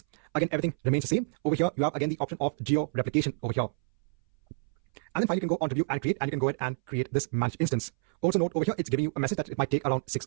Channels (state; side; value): silent; left; 59 dB below the other